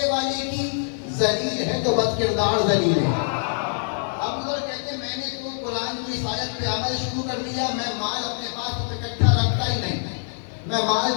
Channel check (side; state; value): right; silent; digital silence